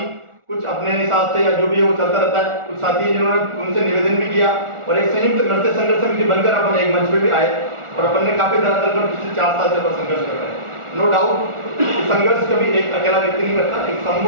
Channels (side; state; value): left; late; 1.4 ms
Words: कुछ अपने हिसाब से या जो भी है वो चलता रहता है। कुछ साथी जिन्होंने उनसे निवेदन भी किया और एक संयुक्त नरसेज संघर्ष समिति बनकर अपन एक मंच पे भी आए और अपन ने काफी धरातल पर पिछले 4 साल से अपन संघर्ष कर रहे हैं। नो डाउट संघर्ष कभी एक अकेला व्यक्ति नहीं करता, एक